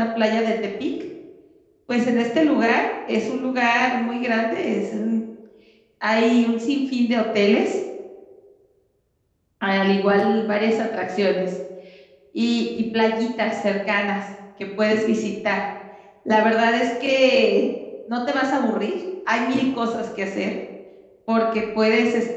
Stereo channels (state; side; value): identical; both; correlation 1.00